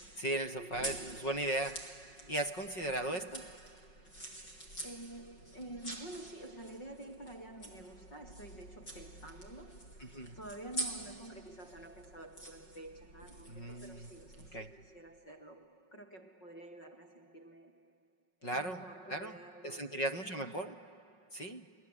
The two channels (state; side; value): late; right; 5.4 ms